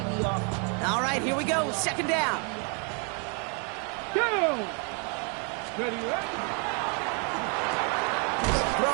All right, here we go. 2nd down. Go. Ready, ready.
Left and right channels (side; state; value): left; quieter; 38.3 dB